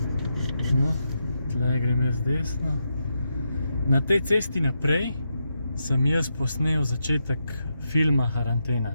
No, tle grem jaz desno. Na tej cesti naprej sem jaz posnel začetek filma Karantena.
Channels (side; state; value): both; inverted; correlation -0.84